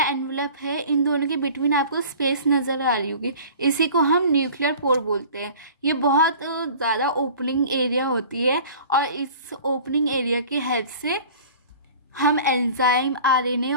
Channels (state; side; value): inverted; both; correlation -0.43